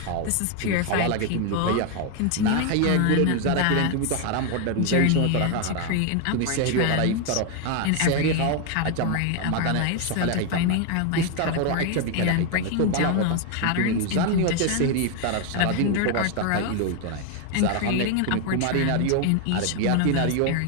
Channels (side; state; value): both; different; correlation 0.01